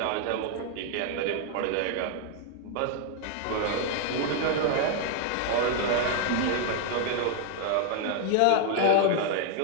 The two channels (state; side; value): different; both; correlation 0.00